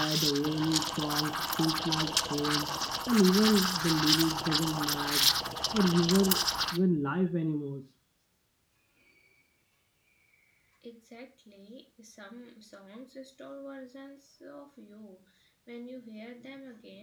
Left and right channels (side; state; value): both; identical; correlation 1.00